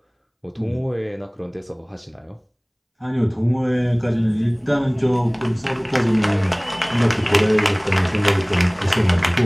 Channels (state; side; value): identical; both; correlation 1.00